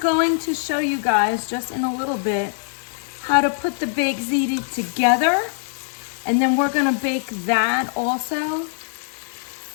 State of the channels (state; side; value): silent; right; 64 dB below the other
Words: to show you guys just in a little bit how to put the baked ziti together. And then we're gonna bake that also